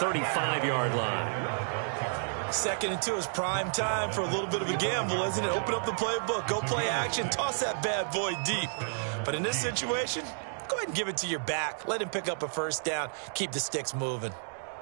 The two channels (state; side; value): silent; left; digital silence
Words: line. 2nd and 2 is prime time for a little bit of a gamble, isn't it? Open up the playbook, go play action, toss that bad boy deep. But in this situation, go ahead and give it to your back. Let him pick up a 1st down. Keep the sticks moving.